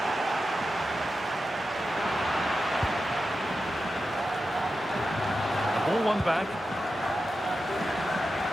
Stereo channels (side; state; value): both; normal; correlation 0.91